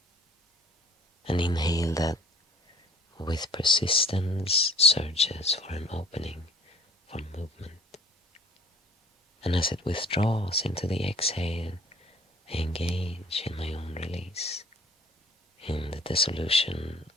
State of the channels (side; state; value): both; normal; correlation 0.50